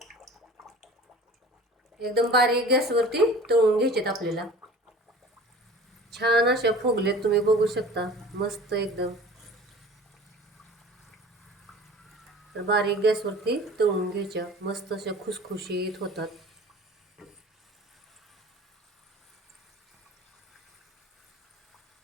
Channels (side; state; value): both; normal; correlation 0.42